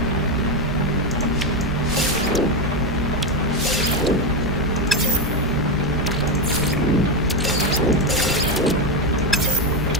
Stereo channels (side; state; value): both; normal; correlation 0.09